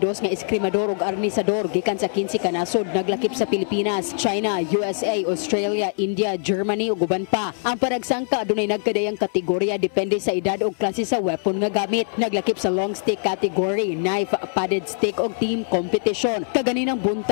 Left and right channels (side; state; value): right; silent; 64 dB below the other